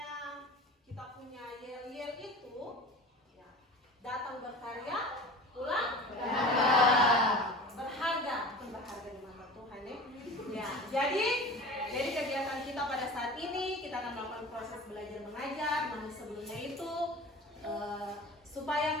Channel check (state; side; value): normal; both; correlation 0.37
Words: kita punya yel-yel itu, ya, datang berkarya, pulang berharga. Berharga, bukan berharga di mata Tuhan ya. Ya, jadi kegiatan kita pada saat ini kita akan melakukan proses belajar mengajar. Namun sebelumnya itu supaya